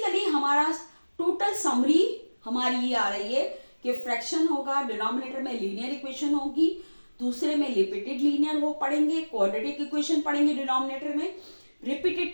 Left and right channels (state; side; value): inverted; both; correlation -1.00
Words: हमारा टोटल समरी हमारी ये आ रही है कि फ्रैक्शन होगा, डिनोमिनेटर में लीनियर इक्वेशन होगी, दूसरे में रिपीटेड लीनियर वो पढ़ेंगे, क्वाड्रेटिक इक्वेशन पढ़ेंगे डिनोमिनेटर में, रिपीटेड